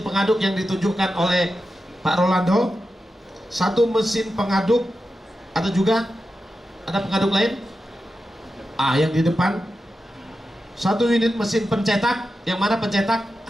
pengaduk yang ditunjukkan oleh Pak Rolando. 1 mesin pengaduk. Ada juga? Ada pengaduk lain? Yang di depan. 1 unit mesin pencetak. Yang mana pencetak?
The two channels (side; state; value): both; normal; correlation 0.90